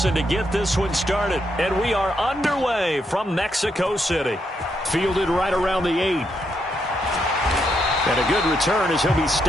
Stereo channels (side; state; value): both; normal; correlation 0.79